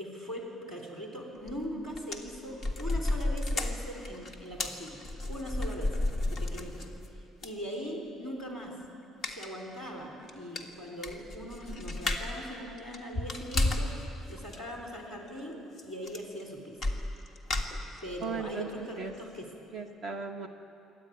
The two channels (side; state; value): both; normal; correlation 0.74